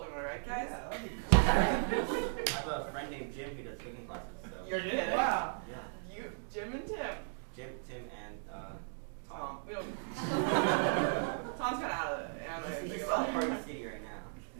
Am I right, guys? Yeah, that'd be cool. I have a friend named Jim who does cooking classes. So. You're kidding. Wow. Yeah. You, Jim and Tim. Jim, Tim, and Tom. We don't. Tom's kind of out of it. He's still in Party City right now.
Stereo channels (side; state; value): left; silent; digital silence